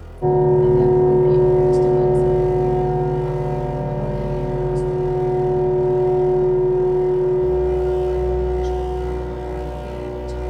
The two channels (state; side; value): identical; both; correlation 1.00